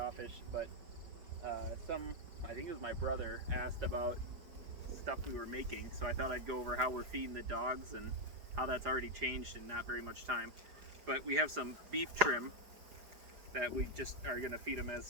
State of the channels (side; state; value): left; late; 4.9 ms